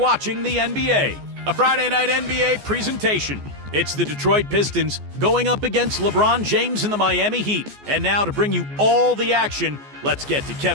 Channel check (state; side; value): late; left; 14 ms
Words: the NBA, a Friday night NBA presentation. It's the Detroit Pistons going up against LeBron James and the Miami Heat. And now to bring you all the action, let's get to